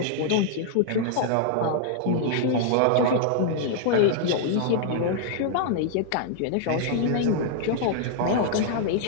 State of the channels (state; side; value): different; both; correlation -0.01